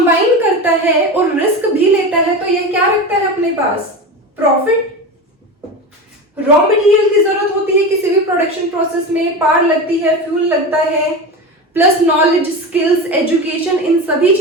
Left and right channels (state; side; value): normal; both; correlation 0.25